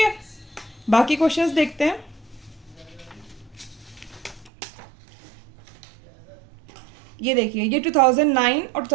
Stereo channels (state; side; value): drops out; left; at 4.5 s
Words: बाकी क्वेश्चंस देखते हैं। ये देखिए, ये 2009 और